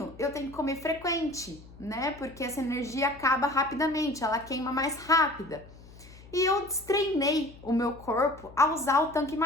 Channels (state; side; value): noise; left; hum, 20 dB below the sound